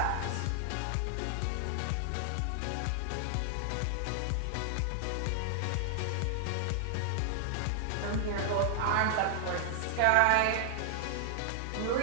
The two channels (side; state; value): both; different; correlation 0.00